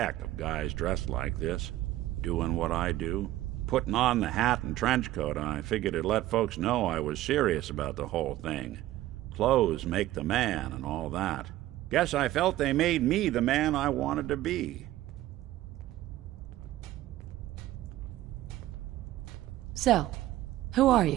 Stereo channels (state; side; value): quieter; left; 15.0 dB